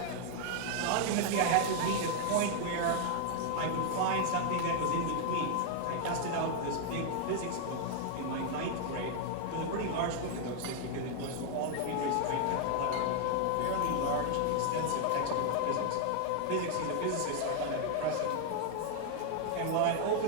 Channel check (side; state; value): both; different; correlation 0.00